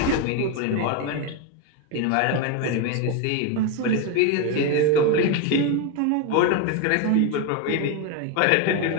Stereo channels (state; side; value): different; both; correlation 0.02